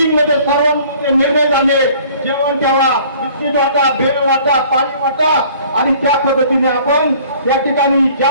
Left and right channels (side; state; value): both; inverted; correlation -0.53